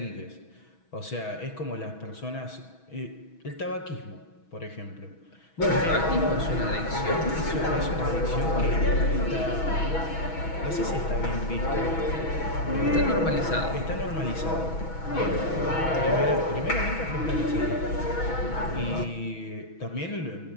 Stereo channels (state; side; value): late; right; 6.2 ms